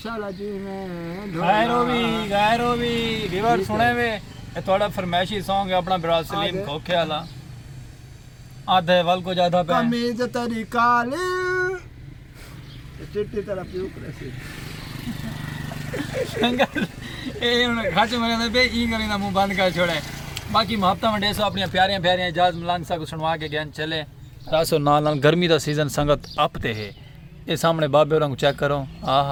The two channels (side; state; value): both; identical; correlation 1.00